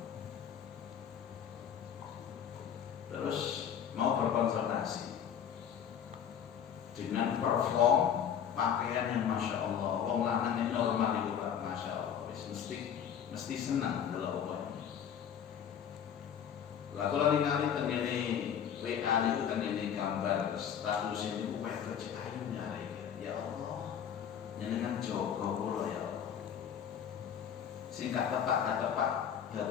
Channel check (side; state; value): right; quieter; 8.6 dB